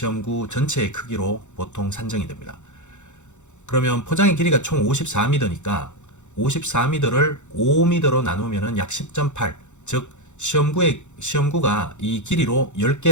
전체의 크기로 보통 산정이 됩니다. 그러면 포장의 길이가 총 54m니까 54m를 5m로 나누면 약 10.8, 즉 시험구가 이 길이로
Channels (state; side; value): late; right; 0.84 ms